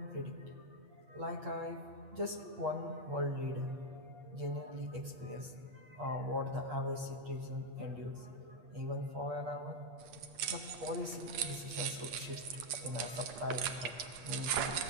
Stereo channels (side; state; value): left; late; 8.4 ms